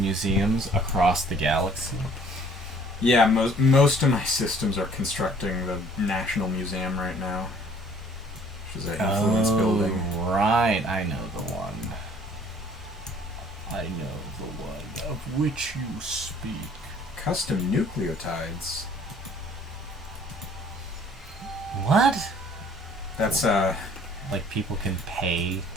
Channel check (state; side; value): normal; both; correlation 0.56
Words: museums across the galaxy. Yeah, most of my systems are constructing the National Museum right now, which is an influence building. Right, I know the one. I know the one of which you speak. Custom nucleotides. What? That's like people can pay